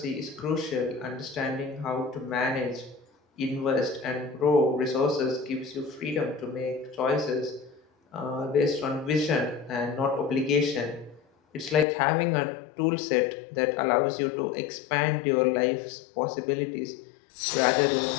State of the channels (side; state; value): right; drops out; at 11.9 s